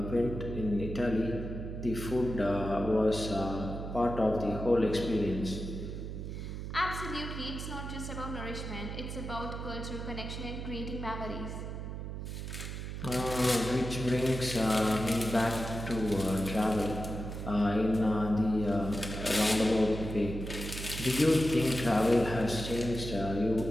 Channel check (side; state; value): right; noise; hum, 6 dB below the sound